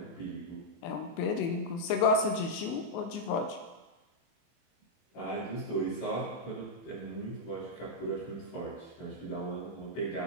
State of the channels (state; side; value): late; right; 24 ms